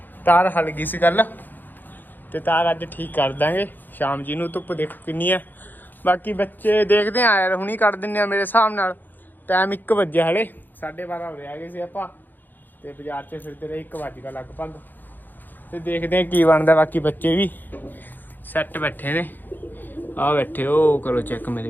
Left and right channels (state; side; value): late; right; 0.088 ms